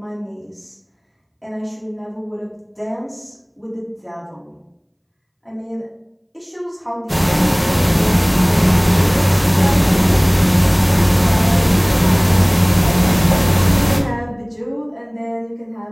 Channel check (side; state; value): both; identical; correlation 1.00